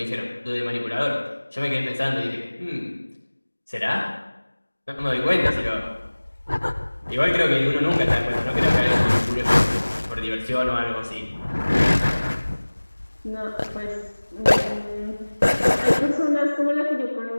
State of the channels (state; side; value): inverted; both; correlation -1.00